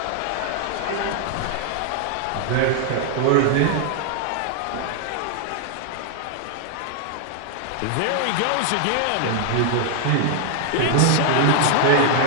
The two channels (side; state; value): both; different; correlation 0.00